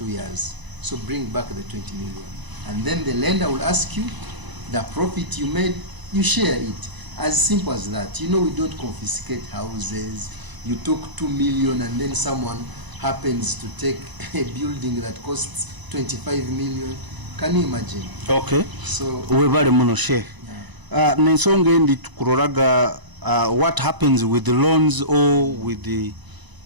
years. So bring back the 20 million. And then the lender will ask you the profit you made, you share it. As simple as that. You know, we don't confiscate houses. You took 2 million and then someone happens to take a building that costs 25 million. Can you imagine? Okay. So webale muno Sheikh. Nensonga endi tukuroraga what happens with the loans or with the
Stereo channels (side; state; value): left; late; 1.0 ms